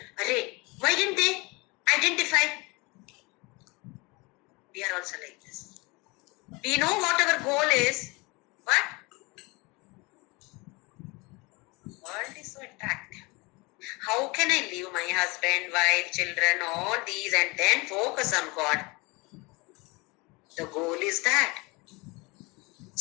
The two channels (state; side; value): quieter; right; 25.9 dB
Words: Array, why didn't they identify? We are also like this. We know what our goal is, but world is so attractive. How can I leave my husband, wife, children, all these and then focus on God? The goal is that.